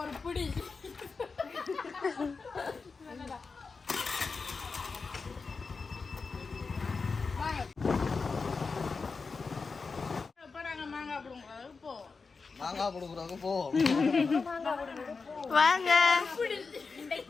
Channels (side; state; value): right; quieter; 4.6 dB